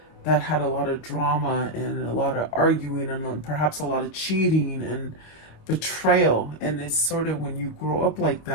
that had a lot of drama and a lot of arguing and perhaps a lot of cheating and betrayal. And it's sort of when you grow up like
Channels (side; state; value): right; late; 25 ms